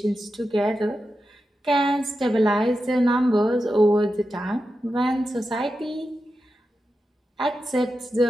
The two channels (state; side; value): normal; both; correlation 0.90